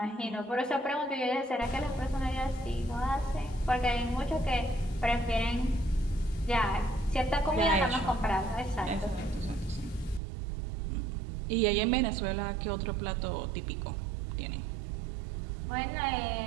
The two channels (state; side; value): drops out; left; at 10.2 s